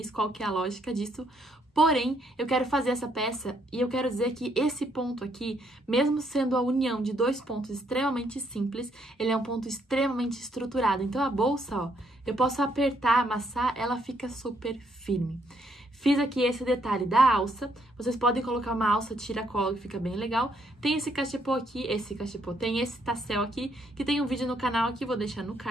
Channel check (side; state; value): both; normal; correlation 0.72